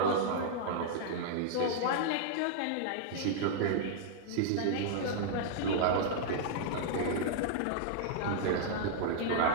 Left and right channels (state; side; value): different; both; correlation -0.01